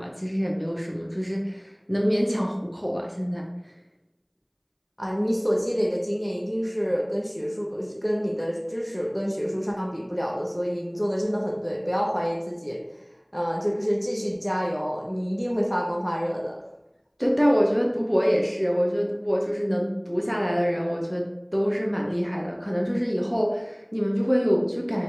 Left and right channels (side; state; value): both; identical; correlation 1.00